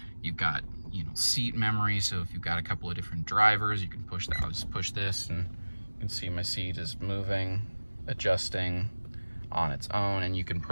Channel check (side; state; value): both; inverted; correlation -1.00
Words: You've got, you know, seat memory. So if you've got a couple of different drivers, you can push that. I'll just push this and you can see my seat is moving, adjusting on its own, and you can